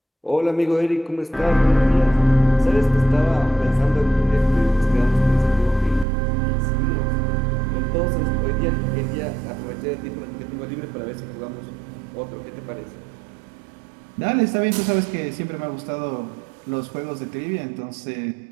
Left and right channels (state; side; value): drops out; left; at 6.1 s